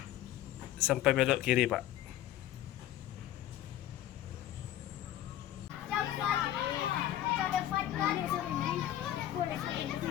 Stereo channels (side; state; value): right; quieter; 12.8 dB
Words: sampai belok kiri, Pak.